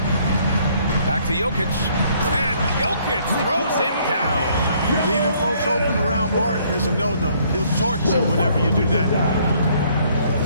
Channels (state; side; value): inverted; both; correlation -0.64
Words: Back to Jokic. And Jokic throws it down. Leaving folks open around Barton is a no-no. He'll torch you whenever you do that.